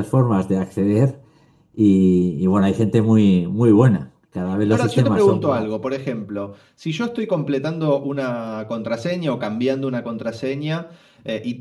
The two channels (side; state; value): both; identical; correlation 1.00